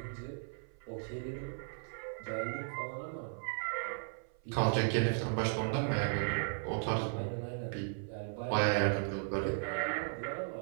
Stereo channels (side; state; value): left; silent; 54 dB below the other